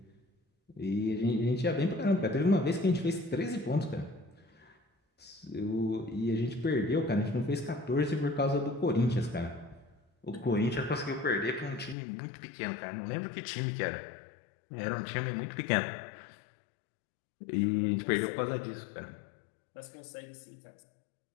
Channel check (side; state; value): right; drops out; at 12.0 s